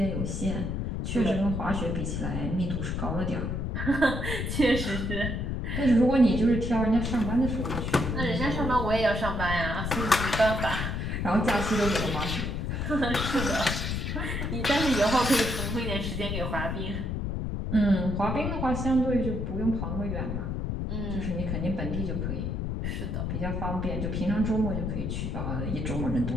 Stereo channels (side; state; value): left; noise; rumble, 2 dB below the sound